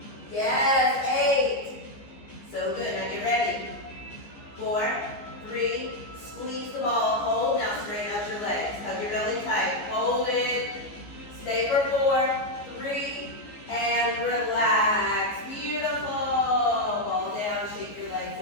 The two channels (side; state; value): right; late; 15 ms